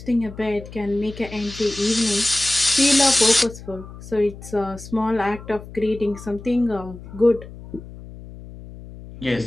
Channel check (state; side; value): noise; left; hum, 15 dB below the sound